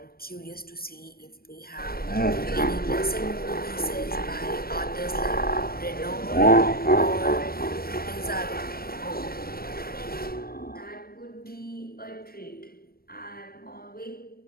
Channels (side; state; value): right; late; 0.44 ms